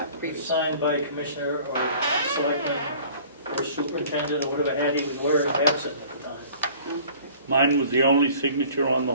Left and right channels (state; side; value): inverted; both; correlation -0.49